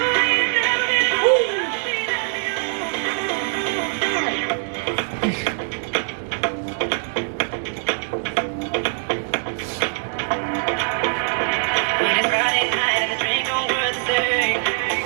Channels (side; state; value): left; silent; digital silence